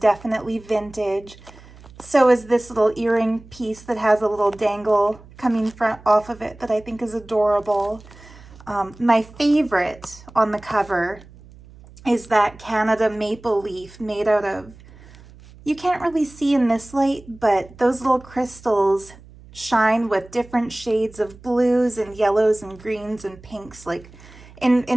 vintage. So is this little earring piece that has a little dangle coming off of it that I think is adorable. My favorite on the cover is that Canada maple leaf made out of, you can't really see in this light, but those little crystals shine with different shades of blues and yellows and greens and pinks. Like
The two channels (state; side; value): noise; right; hum, 22 dB below the sound